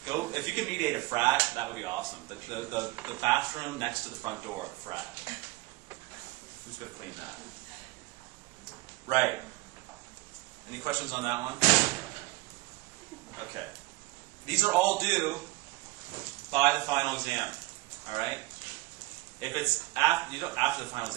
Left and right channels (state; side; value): quieter; left; 21.8 dB